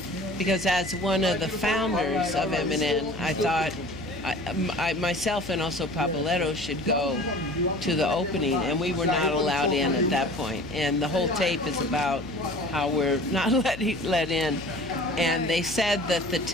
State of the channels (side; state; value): left; noise; hum, 15 dB below the sound